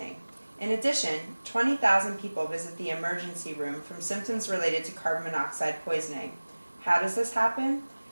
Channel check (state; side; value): inverted; both; correlation -1.00